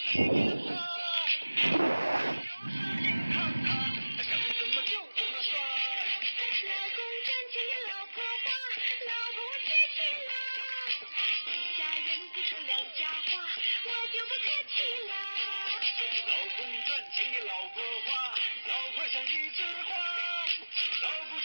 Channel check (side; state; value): both; inverted; correlation -1.00